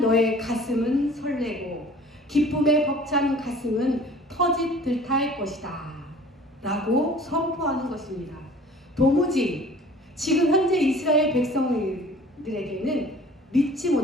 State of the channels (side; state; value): both; normal; correlation 0.48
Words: 가슴은 설레고 기쁨에 벅찬 가슴은 터짓 듯할 것이다 라고 선포하는 것입니다. 도무지 지금 현재 이스라엘 백성들에게는 믿지